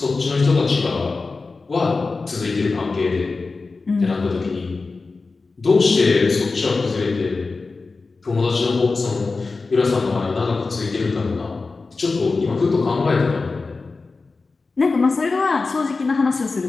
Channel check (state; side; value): quieter; right; 4.0 dB